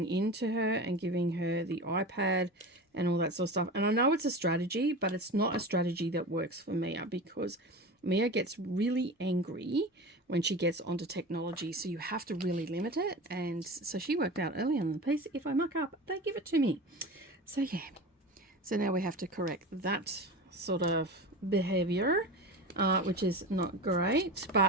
in to her and giving her the iPad and all that sort of stuff. And I know it's a strategy, but it's not a strategy that works for Mia, because Mia gets really angry when she gets onto technology, so you have to really limit it. And so she worked out early on the piece, if I muck up, they give it to me. So yeah, so now we have to correct that sort of behavior, which is not great,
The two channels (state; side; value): normal; both; correlation 0.30